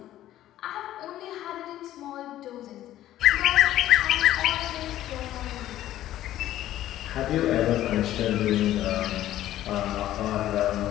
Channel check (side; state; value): right; quieter; 13.4 dB